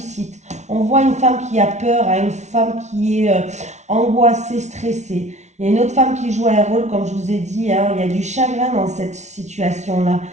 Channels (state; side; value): late; left; 0.33 ms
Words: On voit une femme qui a peur, hein, une femme qui est angoissée, stressée. Il y a une autre femme qui joue un rôle, comme je vous ai dit, hein, il y a du chagrin dans cette situation-là.